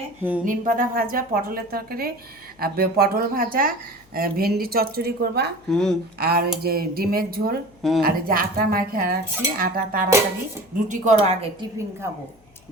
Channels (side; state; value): left; noise; hum, 30 dB below the sound